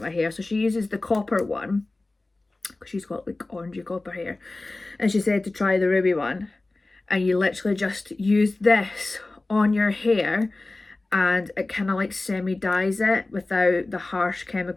my hair. So she uses the copper one because she's got like orangey copper hair, and she said to try the ruby one, and you literally just use this on your hair and it kind of like semi-dyes it without the harsh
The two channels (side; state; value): right; quieter; 3.1 dB